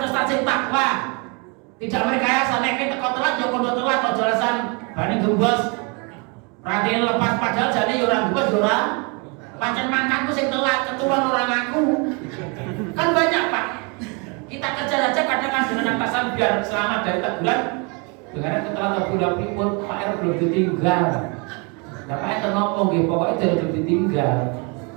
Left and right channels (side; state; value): left; quieter; 32.3 dB